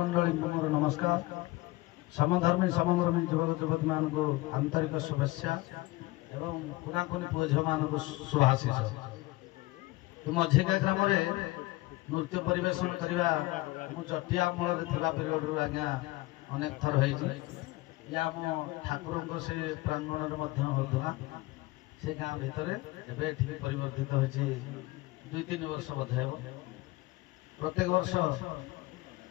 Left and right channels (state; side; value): quieter; right; 20.5 dB